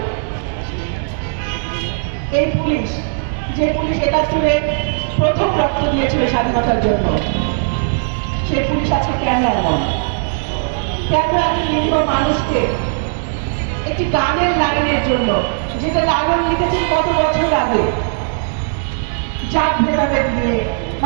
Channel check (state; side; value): silent; left; digital silence